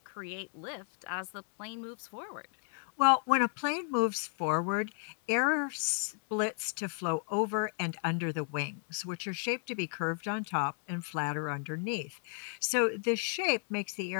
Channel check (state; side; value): silent; right; 55 dB below the other